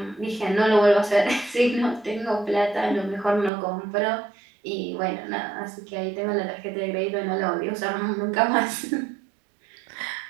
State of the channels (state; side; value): drops out; left; at 3.5 s